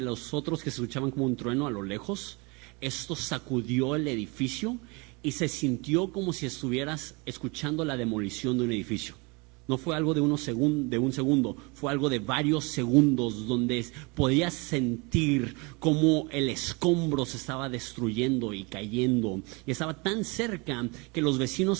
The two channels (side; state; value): left; quieter; 28.4 dB